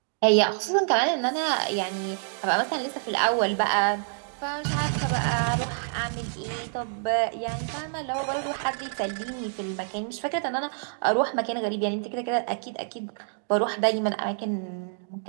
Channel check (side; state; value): left; silent; digital silence